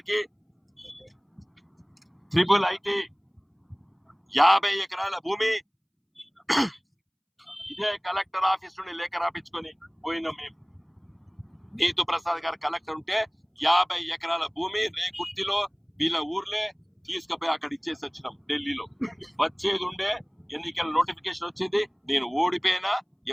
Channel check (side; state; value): both; identical; correlation 1.00